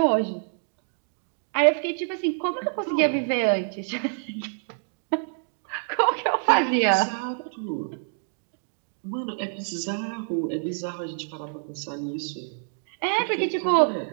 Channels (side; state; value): left; silent; digital silence